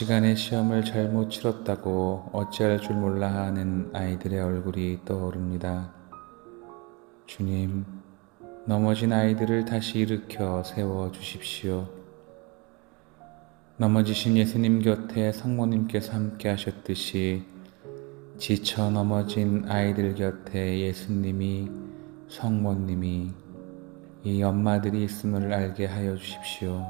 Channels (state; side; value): quieter; left; 28.3 dB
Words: 시험을 잘못 치렀다고 어찌할 줄 몰라 하는 아이들의 얼굴이 떠오릅니다. 주님, 넘어진 아이들을 다시 일으켜 세워 주십시오. 넘어지신 예수님 곁에 성모님께서 함께 하셨듯이 지쳐 넘어진 아이들 곁에 예수님이, 성모님이, 이 엄마들이 있음을 알게 하여 주십시오.